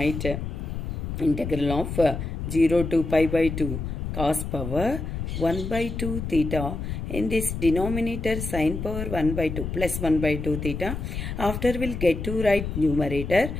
integral of 0 to pi by 2 cos power 1 by 2 theta. In this denominator sin power 1 by 2 plus 1 by 2 theta. After we'll get to write numerator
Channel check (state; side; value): noise; left; rumble, 5 dB below the sound